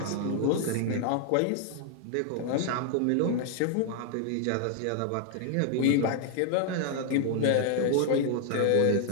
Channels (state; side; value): different; both; correlation 0.00